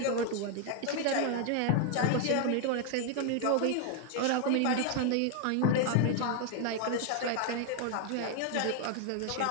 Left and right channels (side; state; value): both; different; correlation 0.00